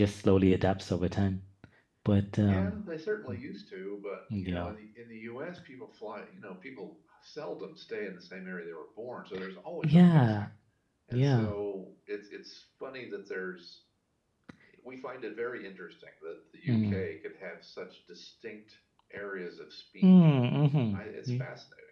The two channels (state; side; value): identical; both; correlation 1.00